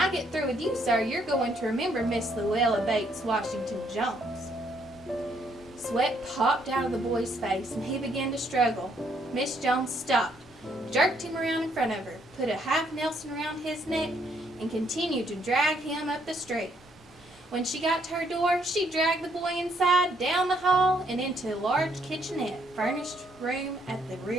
get through with you, sir, you're going to remember Miss Luella Bates Washington Jones." Sweat popped out of the boy's face and he began to struggle. Miss Jones stopped, jerked him around in front of her, put a half Nelson around his neck, and continued to drag him up the street. When she got to her door, she dragged the boy inside, down the hall, and into a large kitchenette, furnished room at the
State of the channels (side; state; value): both; normal; correlation 0.70